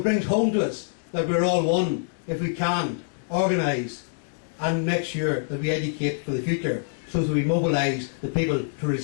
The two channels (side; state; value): right; silent; digital silence